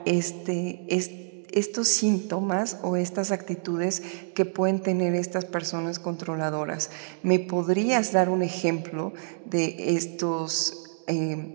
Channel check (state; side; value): silent; left; digital silence